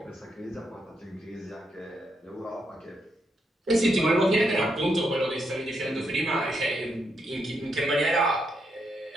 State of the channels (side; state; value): both; normal; correlation 0.80